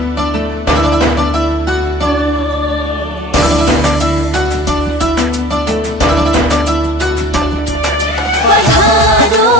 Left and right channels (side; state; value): both; normal; correlation 0.49